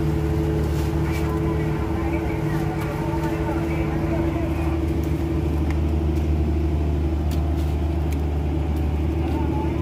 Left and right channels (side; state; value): both; identical; correlation 1.00